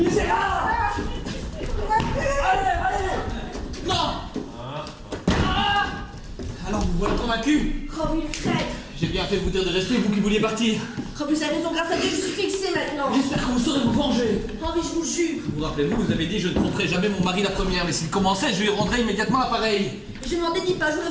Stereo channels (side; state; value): both; identical; correlation 1.00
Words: Allez! Non. Alors vous voilà convaincu? Oh, oui, le traître. J'ai bien fait de vous dire de rester, vous qui vouliez partir. Oh, vous avez raison, grâce à Dieu, je suis fixée maintenant. J'espère que vous saurez vous venger. Oh, mais je vous jure. Vous rappelez-vous, vous avez dit je ne tromperai jamais mon mari la première, mais s'il commençait, je lui rendrais immédiatement l'appareil. Je m'en dédie pas, je voudrais